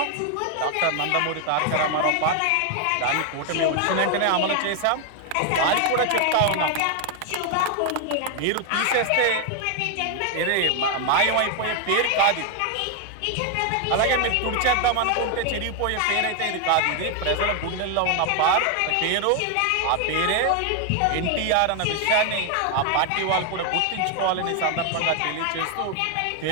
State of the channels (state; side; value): different; both; correlation 0.00